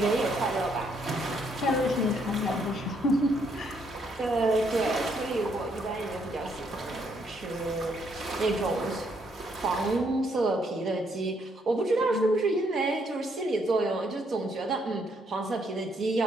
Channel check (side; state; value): both; normal; correlation 0.72